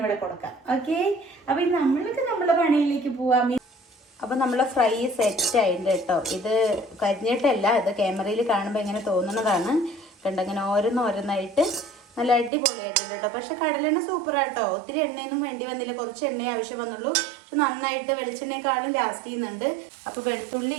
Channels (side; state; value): left; drops out; at 12.5 s